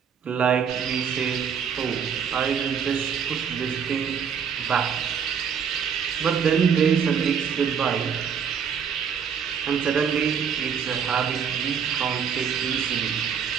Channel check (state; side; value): quieter; left; 7.2 dB